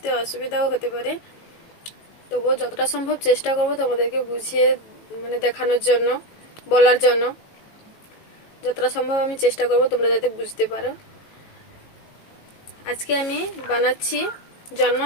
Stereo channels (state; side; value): late; right; 18 ms